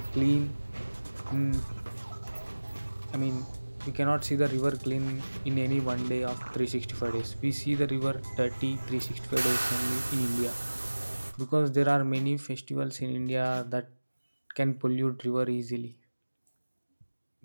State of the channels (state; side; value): inverted; both; correlation -1.00